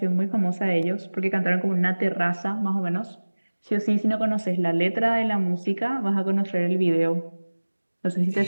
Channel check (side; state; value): both; inverted; correlation -1.00